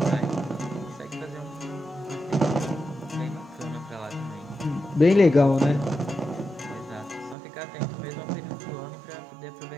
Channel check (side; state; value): left; drops out; at 7.4 s